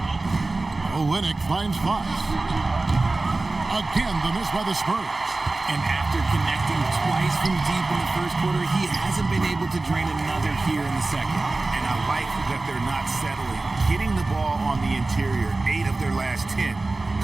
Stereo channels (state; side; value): quieter; left; 3.2 dB